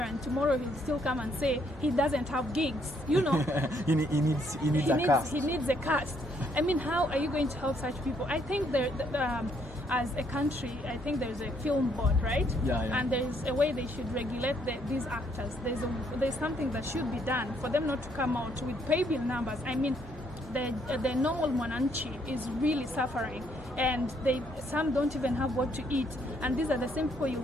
and tomorrow he'll still come and say he doesn't have gigs. You know, he needs a cast. He needs a cast. I mean, how are you going to help such people? I think as a country, I think there's a film board, right? And there's a way they should regulate these actors. There's something that should be done for them not to come out with pay bill numbers. I mean, the normal Mwananchi is really suffering, and some don't even have what to eat. And these are the same people you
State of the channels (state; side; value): normal; both; correlation 0.70